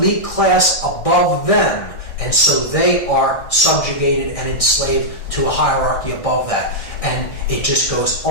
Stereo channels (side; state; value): right; late; 1.6 ms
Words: class above them, and so they are subjugated and enslaved to a hierarchy above that. And it just goes